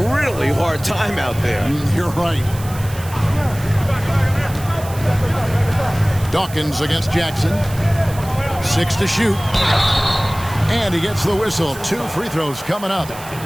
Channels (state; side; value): noise; right; hiss, 16 dB below the sound